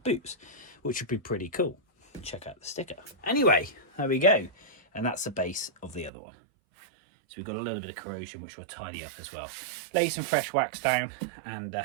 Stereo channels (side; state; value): left; drops out; at 6.1 s